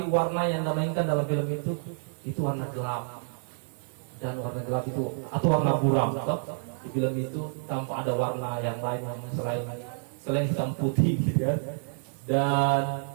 warna yang dimainkan dalam film itu warna gelap, dan warna gelap itu atau warna buram di film itu tanpa ada warna yang lain yang selain hitam putih gitu kan. Dan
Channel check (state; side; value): silent; left; digital silence